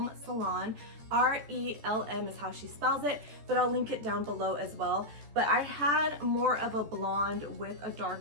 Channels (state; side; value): late; left; 14 ms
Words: Salon. R-E-L-M is how she spells it, but I'll link it down below as well. But I had more of a blonde with a